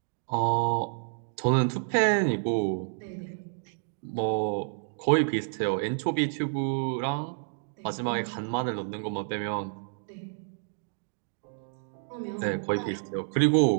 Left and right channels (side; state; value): left; silent; digital silence